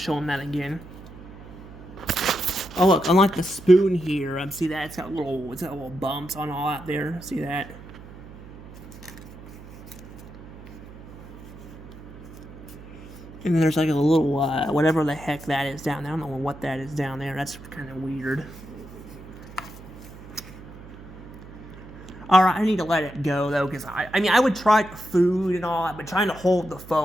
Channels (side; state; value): right; noise; hum, 16 dB below the sound